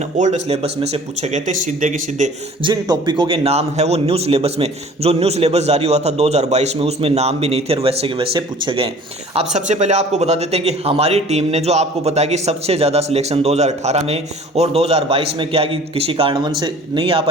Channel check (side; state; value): both; normal; correlation 0.48